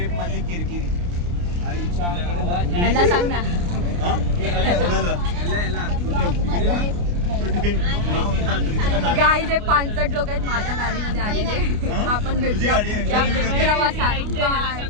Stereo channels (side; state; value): left; late; 29 ms